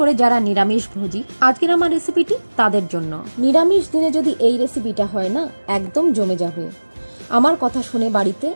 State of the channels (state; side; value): inverted; both; correlation -1.00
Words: যারা নিরামিষ ভোজী, আজকের আমার রেসিপিটি তাদের জন্য। নিরামিষ দিনে যদি এই রেসিপিটা হয় না, একদম জমে যাবে। আমার কথা শুনে বাড়িতে